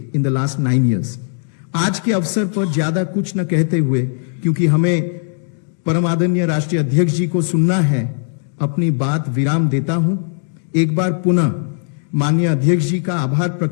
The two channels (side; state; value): right; silent; digital silence